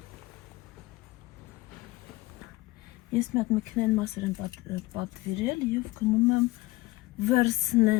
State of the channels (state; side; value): quieter; right; 19.8 dB